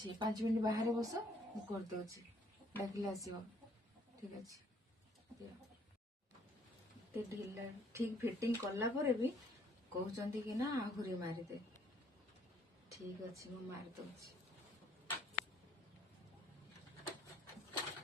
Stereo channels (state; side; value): normal; both; correlation 0.64